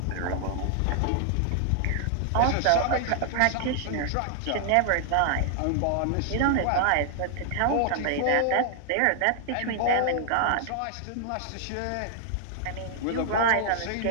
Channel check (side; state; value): both; different; correlation 0.00